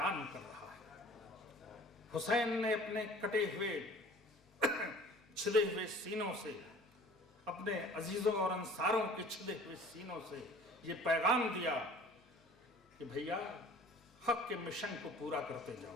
کر رہا ہے. حسین نے اپنے کٹے ہوئے چھدے ہوئے سینوں سے، اپنے عزیزوں اور انصاروں کے چھدے ہوئے سینوں سے یہ پیغام دیا کہ بھیا حق کے مشن کو پورا کرتے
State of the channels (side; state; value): both; normal; correlation 0.48